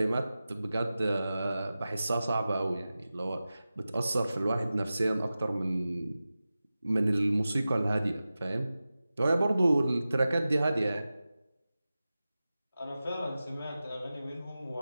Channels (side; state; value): both; inverted; correlation -0.95